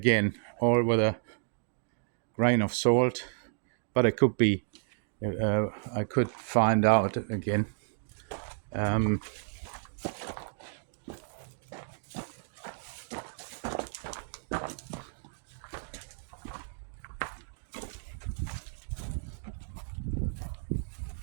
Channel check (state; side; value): silent; left; digital silence